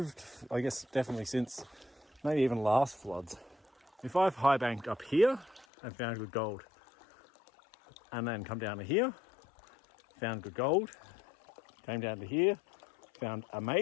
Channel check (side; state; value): right; drops out; at 5.7 s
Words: I guess definitely since maybe even last floods. If I've high banked up here and found good gold, and then come down to here, found good gold, came down to here, found